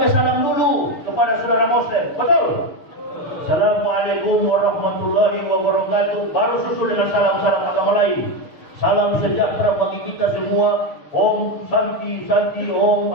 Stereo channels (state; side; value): late; right; 6.6 ms